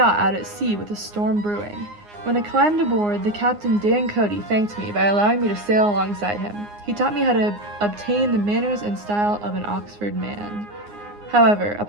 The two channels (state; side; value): late; left; 9.7 ms